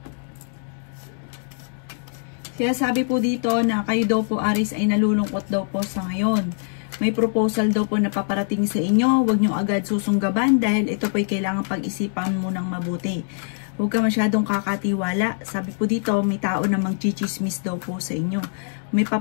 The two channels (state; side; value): silent; right; 63 dB below the other